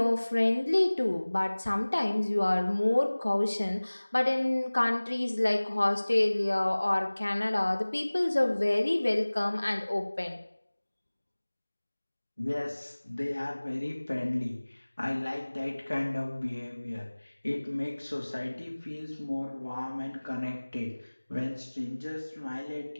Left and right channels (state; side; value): inverted; both; correlation -1.00